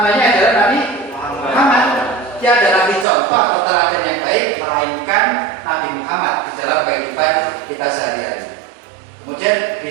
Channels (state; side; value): drops out; left; at 3.1 s